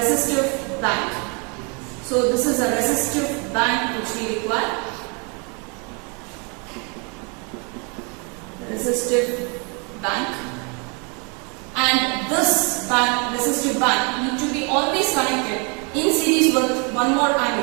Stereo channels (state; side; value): quieter; left; 34.3 dB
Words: resistive bank. So this is a resistive bank which we require. Resistive bank. And this resistive bank need to be always connected in series with one more